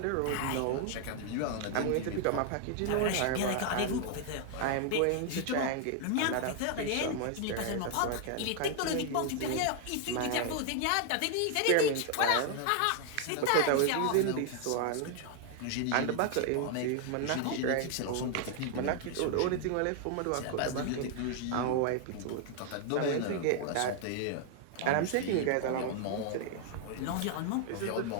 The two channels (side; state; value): both; different; correlation 0.00